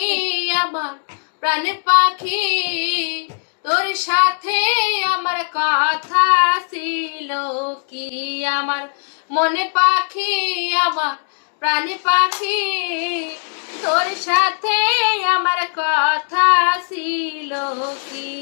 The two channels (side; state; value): right; silent; 66 dB below the other